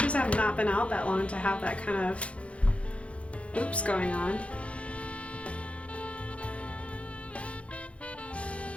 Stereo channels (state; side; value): late; right; 0.062 ms